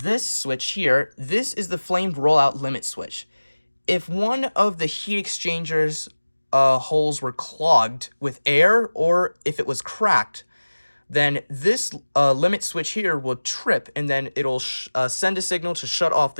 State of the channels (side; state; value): both; inverted; correlation -1.00